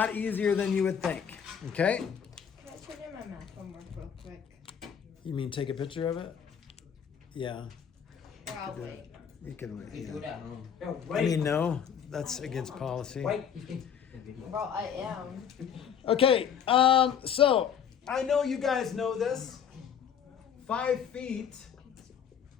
easier than you would think. Okay? Can I turn in my math homework real quick? You mean take a picture of it? Yeah. Or I'll wait. You can wait. You do it Yeah. at home. I mean, no, that's against policy. Well, I am. Okay, so I know you guys know this. 5 feet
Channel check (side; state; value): right; quieter; 8.0 dB